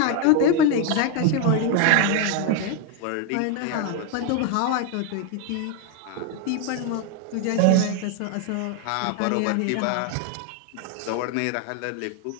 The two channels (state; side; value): different; both; correlation 0.01